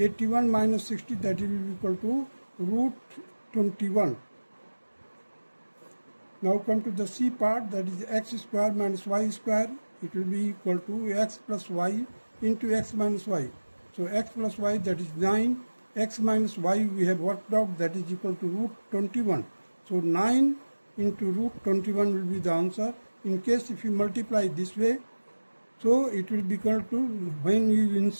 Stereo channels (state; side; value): inverted; both; correlation -1.00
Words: minus 60, that will be equal to root 21. Now come to the C part, that is x square minus y square. It will be equal to x plus y into x minus y. So x plus y, that is 9. X minus y we have worked out, that is equal to root 21. So 9 into root 21 will be the answer. In case if you multiply this way, so it will be equal to, when you